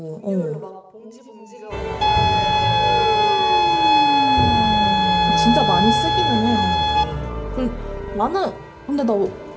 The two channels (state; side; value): identical; both; correlation 1.00